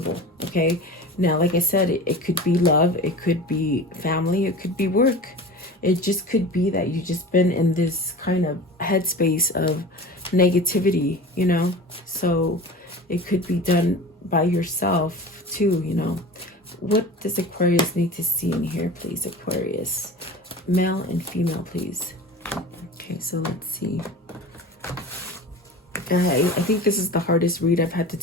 Okay, now like I said, it could be love, it could be family, it could be work. It just could be that you just been in this kind of headspace of negativity, you know. So it could be done by yourself too, you know. What does Aquarius need to see in here, please? Aquarius, male and female, please. Okay, so let's see. I think this is the hardest read I've had to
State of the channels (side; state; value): both; normal; correlation 0.35